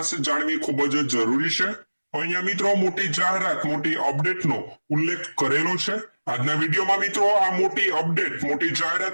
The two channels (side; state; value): both; inverted; correlation -1.00